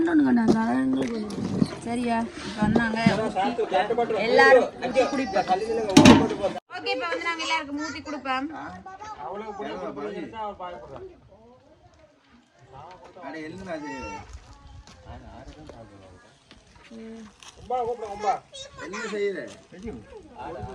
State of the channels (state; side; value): identical; both; correlation 1.00